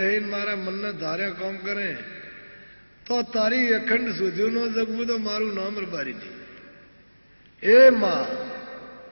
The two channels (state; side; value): inverted; both; correlation -1.00